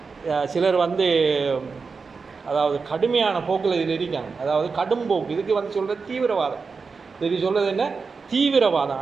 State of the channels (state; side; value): quieter; left; 4.8 dB